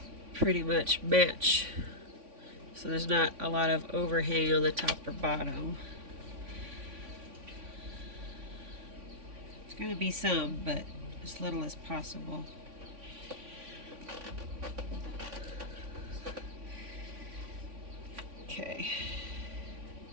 pretty much match, so there's not a lot of overhang on the top or bottom. It's going to be some, but as little as possible. Okay.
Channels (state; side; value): late; left; 3.5 ms